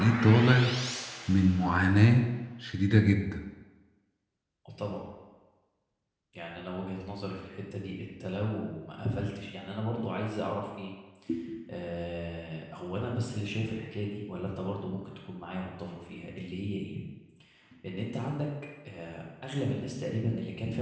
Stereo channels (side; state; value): both; identical; correlation 1.00